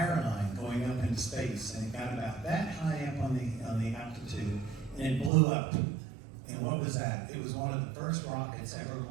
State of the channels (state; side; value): drops out; left; at 5.3 s